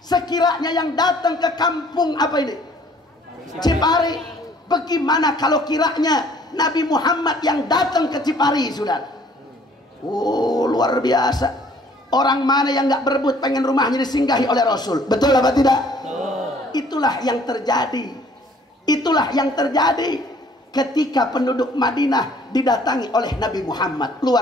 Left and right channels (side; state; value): both; normal; correlation 0.58